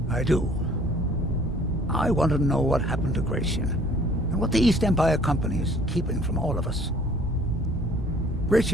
I do. I want to know what happened to Gratian, and what the East Empire Company is keeping from all of us.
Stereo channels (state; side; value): normal; both; correlation 0.55